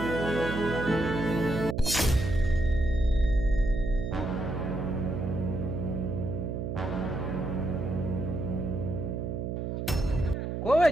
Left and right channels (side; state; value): right; noise; hum, 3 dB below the sound